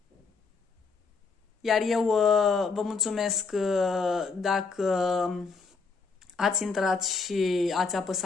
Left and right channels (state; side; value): quieter; right; 4.7 dB